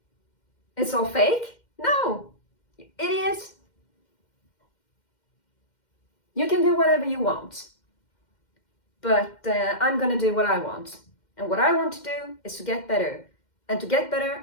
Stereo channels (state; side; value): late; right; 2.1 ms